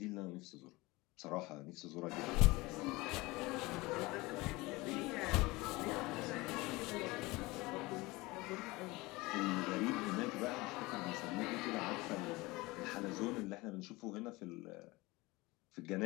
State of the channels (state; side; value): quieter; right; 22.0 dB